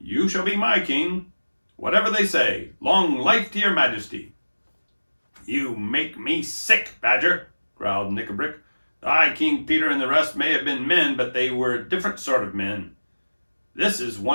shall be my king. Whatever they say, long life to your majesty. You make me sick, Badger, growled Nickabrick. The High King Peter and the rest may have been men, but they were a different sort of men. This is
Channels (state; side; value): inverted; both; correlation -1.00